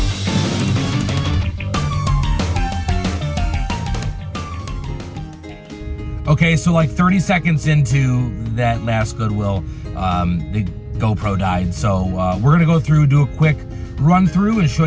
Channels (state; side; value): identical; both; correlation 1.00